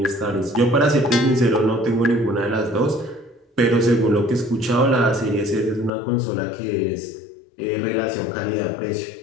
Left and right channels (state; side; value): drops out; right; at 5.9 s